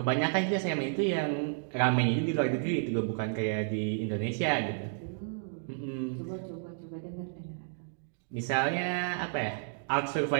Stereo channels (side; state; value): left; silent; digital silence